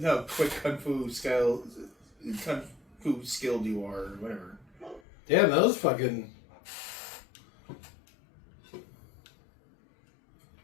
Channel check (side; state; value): right; drops out; at 5.0 s